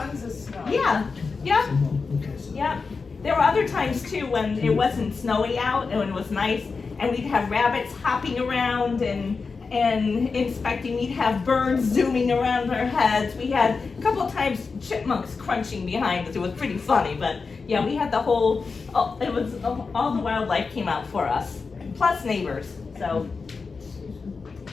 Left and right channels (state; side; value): quieter; right; 4.7 dB